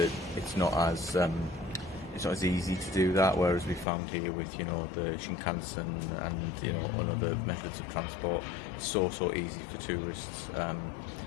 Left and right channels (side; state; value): right; drops out; at 3.9 s